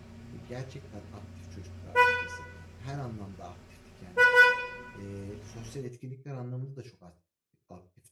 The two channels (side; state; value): both; identical; correlation 1.00